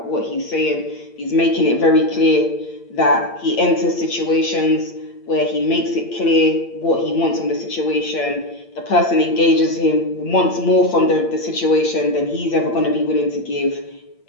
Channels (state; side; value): late; right; 8.7 ms